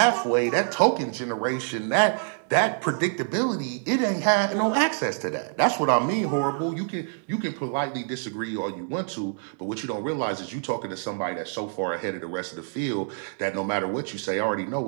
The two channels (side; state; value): left; silent; digital silence